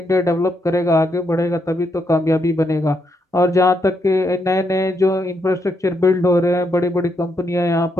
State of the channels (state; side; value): normal; both; correlation 0.78